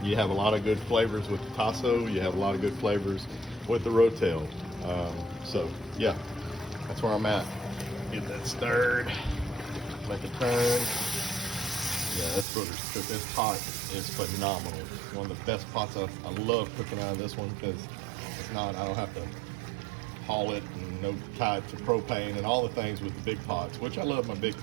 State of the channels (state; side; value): drops out; left; at 12.5 s